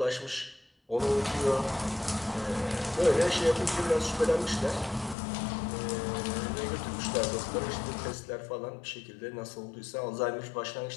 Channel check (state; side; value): drops out; right; at 5.2 s